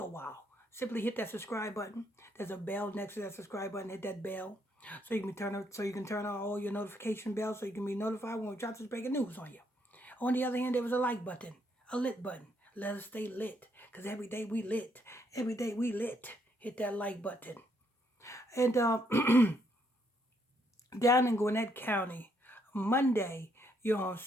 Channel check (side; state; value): both; normal; correlation 0.72